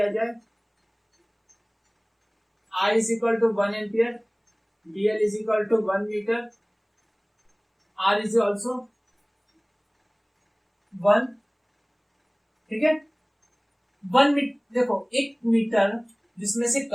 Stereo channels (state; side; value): identical; both; correlation 1.00